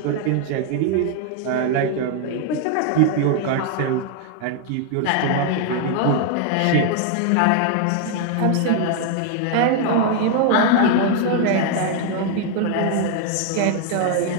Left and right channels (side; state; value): both; different; correlation 0.00